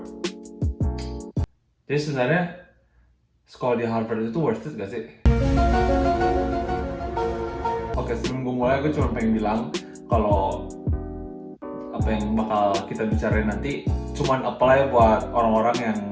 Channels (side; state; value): both; identical; correlation 1.00